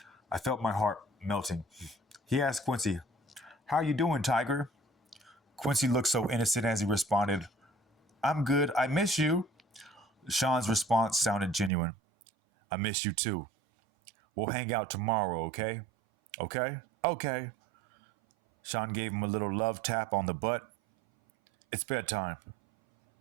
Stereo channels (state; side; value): drops out; left; at 11.7 s